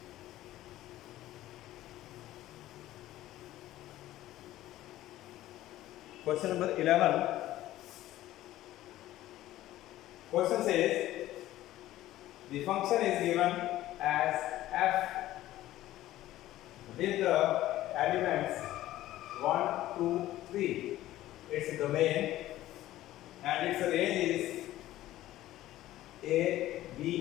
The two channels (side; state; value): right; quieter; 14.8 dB